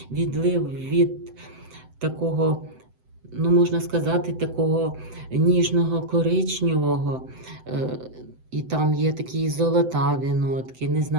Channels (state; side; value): late; left; 7.9 ms